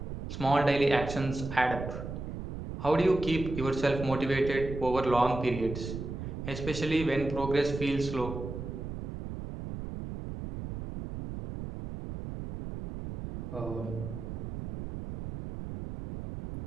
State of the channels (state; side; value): noise; right; rumble, 7 dB below the sound